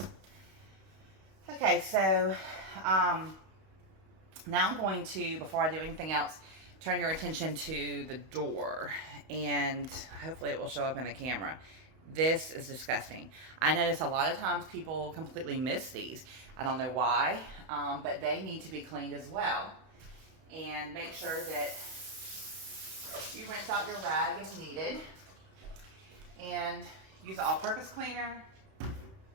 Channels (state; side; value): late; left; 31 ms